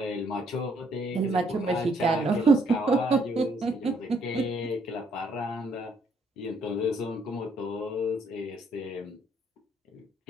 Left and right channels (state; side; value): normal; both; correlation 0.68